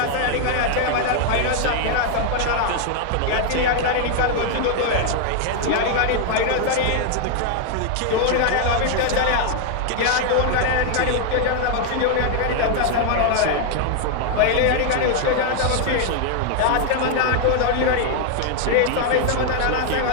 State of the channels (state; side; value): different; both; correlation 0.00